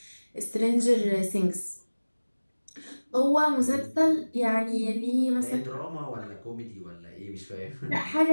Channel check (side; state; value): both; inverted; correlation -1.00